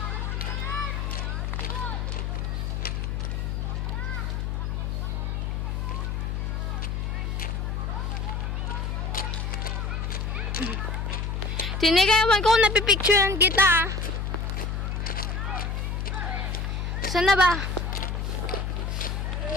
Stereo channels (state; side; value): noise; left; hum, 1 dB below the sound